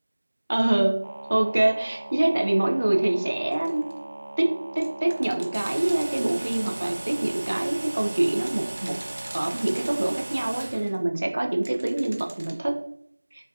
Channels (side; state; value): both; inverted; correlation -1.00